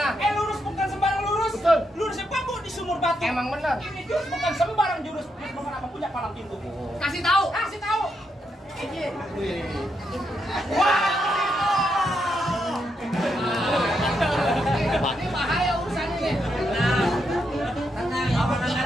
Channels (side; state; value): both; normal; correlation 0.81